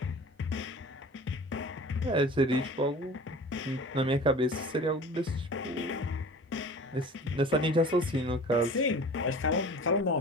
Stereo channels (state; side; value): normal; both; correlation 0.41